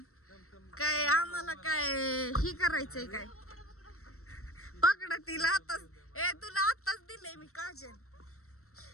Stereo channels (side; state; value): right; late; 0.63 ms